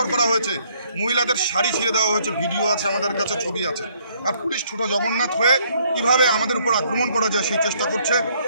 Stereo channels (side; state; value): both; inverted; correlation -0.66